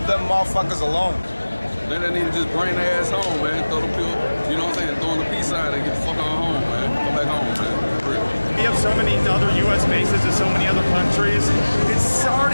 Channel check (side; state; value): both; inverted; correlation -1.00